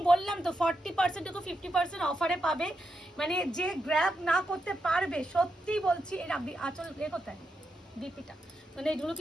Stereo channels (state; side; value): normal; both; correlation 0.85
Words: বললাম তো 40% টু 50% অফারে পাবে। মানে যে গ্র্যাব না করতে পারবে, সত্যি বলছি। এর আচল এ কোথায় বিপিটা, মানে এগুলো